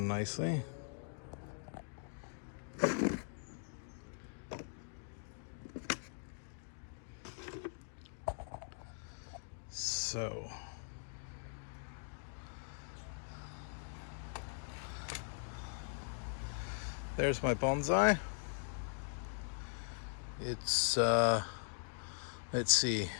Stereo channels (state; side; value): silent; right; digital silence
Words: nicely. So there's my bonsai. It's let's see,